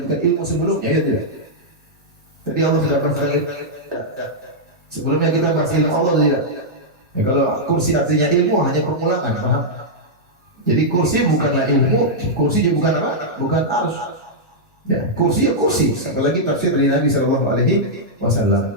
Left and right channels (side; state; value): both; normal; correlation -0.07